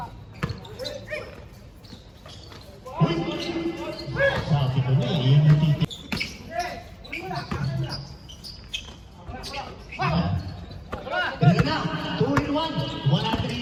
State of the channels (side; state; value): both; identical; correlation 1.00